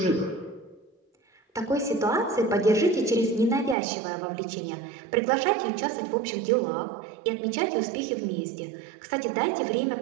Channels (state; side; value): drops out; left; at 3.8 s